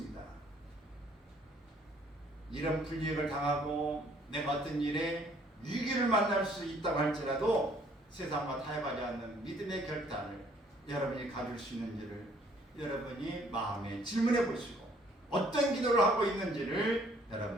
이런 불이익을 당하고 내가 어떤 일에 위기를 만날 수 있다고 할지라도 세상과 타협하지 않는 믿음의 결단을 여러분이 가질 수 있는지를 여러분이 마음에 질문해 보시고 어떤 기도를 하고 있는지를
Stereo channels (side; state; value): both; normal; correlation 0.61